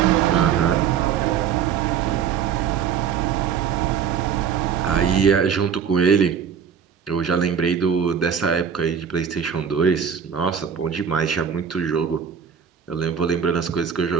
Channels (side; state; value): left; quieter; 7.4 dB